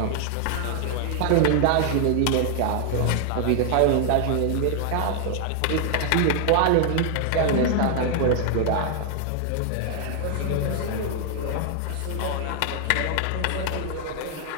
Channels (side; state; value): both; different; correlation 0.00